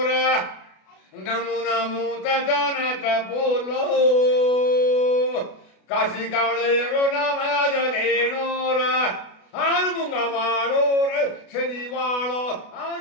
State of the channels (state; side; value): late; right; 32 ms